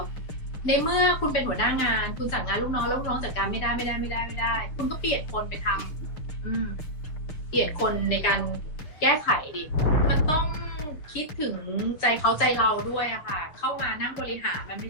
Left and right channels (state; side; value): late; right; 6.6 ms